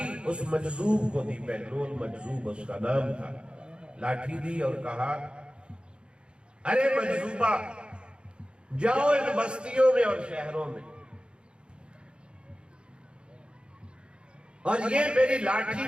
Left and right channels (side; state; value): left; late; 0.054 ms